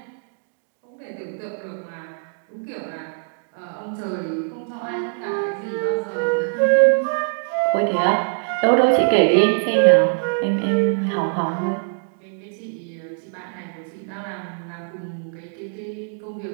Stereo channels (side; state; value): left; silent; digital silence